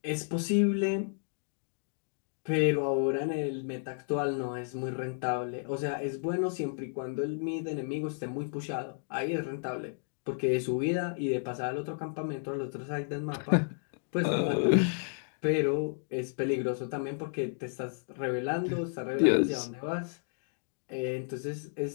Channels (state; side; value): silent; right; digital silence